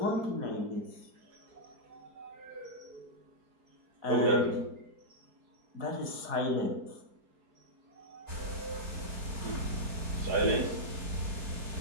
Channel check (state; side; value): late; left; 4.5 ms